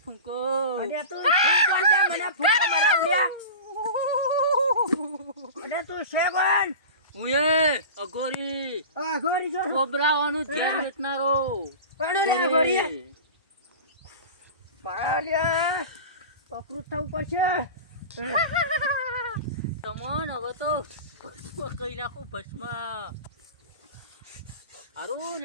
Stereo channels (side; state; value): both; inverted; correlation -0.31